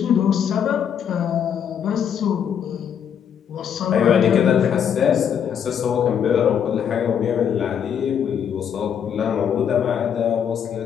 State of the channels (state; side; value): quieter; right; 8.3 dB